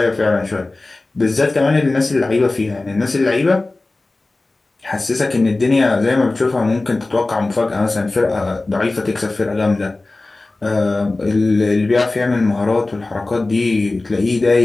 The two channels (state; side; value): quieter; right; 3.1 dB